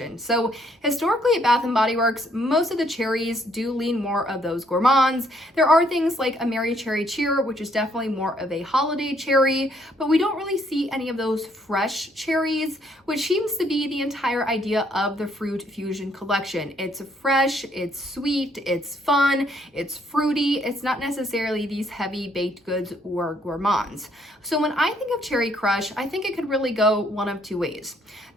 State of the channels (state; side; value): normal; both; correlation 0.68